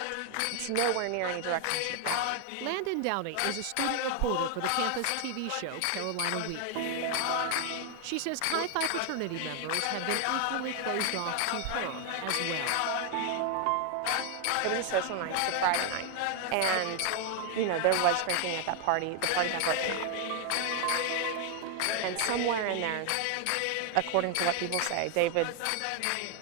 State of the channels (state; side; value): different; both; correlation 0.00